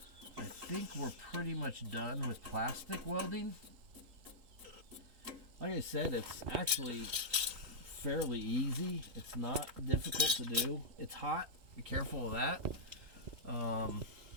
I think we're pretty much done with plastic welding. Like I said, it's actually fairly easy. It's not difficult to do. It's hot. Be careful of that.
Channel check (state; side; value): late; left; 3.8 ms